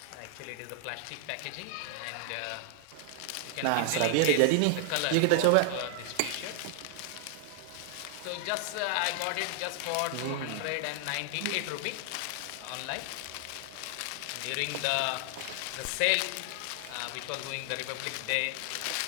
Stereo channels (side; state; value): both; different; correlation 0.00